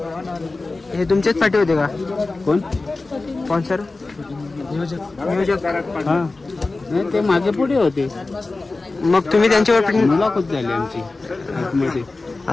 हे तुमचेच पाठी होते का? कोण स्पॉन्सर नियोजक? नाही ते मागे पुढे होते. मग तुम्ही त्यांच्यावर मुलाखत झाली आमची आतमध्ये.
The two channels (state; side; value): quieter; right; 3.4 dB